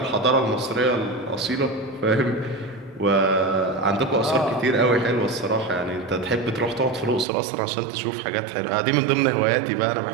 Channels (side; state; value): left; drops out; at 7.2 s